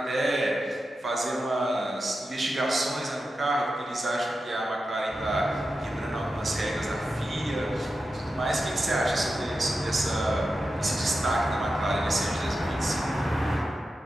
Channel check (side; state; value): both; normal; correlation 0.91